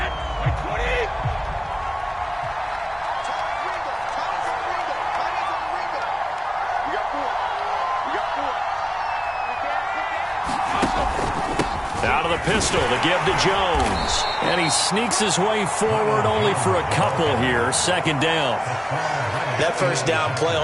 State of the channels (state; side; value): identical; both; correlation 1.00